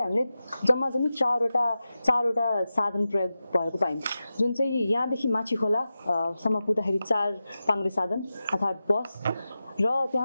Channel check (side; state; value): both; inverted; correlation -0.93